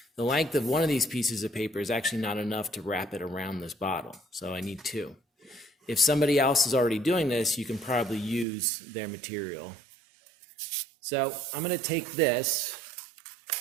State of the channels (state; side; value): drops out; left; at 8.5 s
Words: The length of one of these pieces of paper is actually not enough to wrap it around this bottle, so I need two. If somebody else is already doing this, you can probably use their material. So I'm going to take this